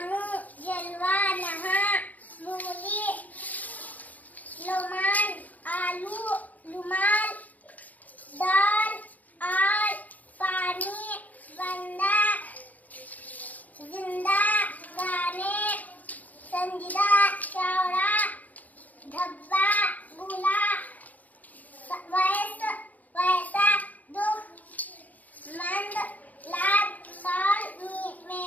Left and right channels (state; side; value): late; right; 0.077 ms